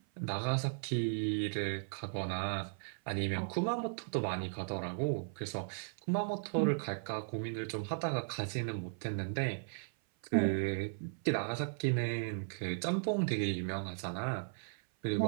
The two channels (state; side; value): silent; left; 53 dB below the other